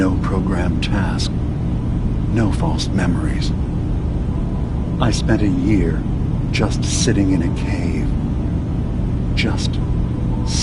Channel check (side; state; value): both; identical; correlation 1.00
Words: programmed task. No false memories. I spent a year just sitting in a cave. Just